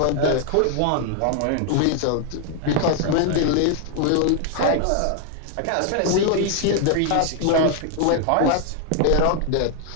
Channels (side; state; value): both; different; correlation 0.00